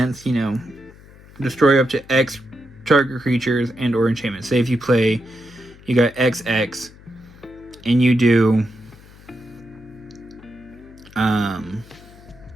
destroy up to X target creatures and or enchantments. Say if you play, you got XX, and you do,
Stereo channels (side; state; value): left; noise; hum, 22 dB below the sound